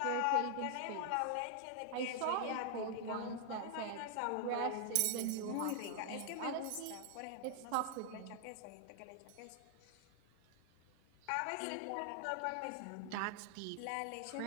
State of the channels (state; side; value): different; both; correlation 0.00